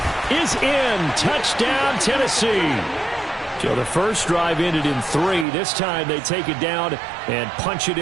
is in. Touchdown, Tennessee. So the first drive ended in 3. This time they take it down and punch it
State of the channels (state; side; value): drops out; left; at 5.5 s